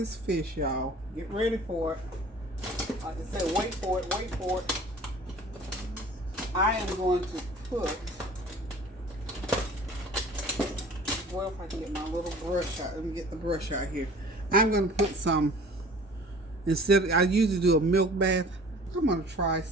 fish, y'all. Get ready for it. Like I said, wait for it, wait for it. I am going to put, well, if I can get my little brush out, let me get the brush out here. I'm going to put some, instead of, I usually do a milk bath, I'm going to try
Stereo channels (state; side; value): normal; both; correlation 0.47